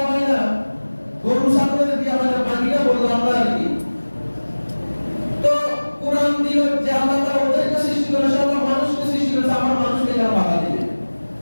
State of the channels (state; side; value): inverted; both; correlation -1.00